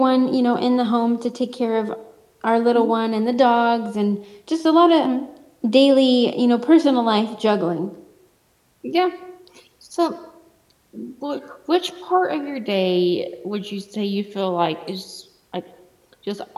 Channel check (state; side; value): identical; both; correlation 1.00